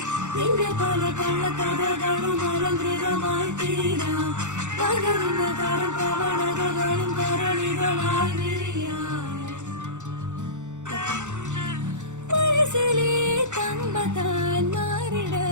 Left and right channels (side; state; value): left; late; 0.84 ms